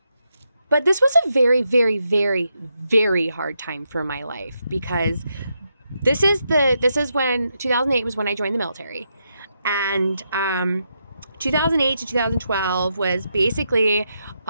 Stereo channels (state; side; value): inverted; both; correlation -0.82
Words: But this was a very, very, very, very hard time for my life because this is when 2008 was when I joined the military. And 2008 to 2012 was basically, it